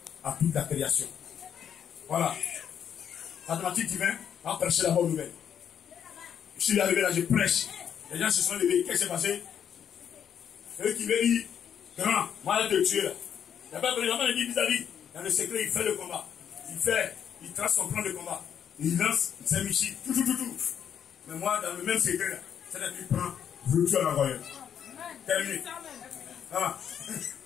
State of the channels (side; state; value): right; quieter; 8.6 dB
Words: à toute la création. Voilà. Mathématique divin, on prêcher la bonne nouvelle. Je suis arrivé là, je prêche. Les gens se sont levés. Qu'est-ce qui s'est passé? C'est eux qui veulent dire, grand, moi je te tuer là. Il n'y a pas de vraiment dit vis-à-vis. Dans le secret, il fait le combat. Il trace son plan de combat. Il lance, il s'est mis tout. Mais moi, dans le même secret là, c'est-à-dire qu'il prend, retour à l'envoyeur. Terminé. Ah.